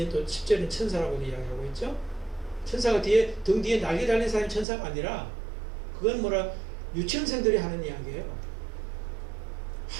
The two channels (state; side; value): drops out; left; at 4.7 s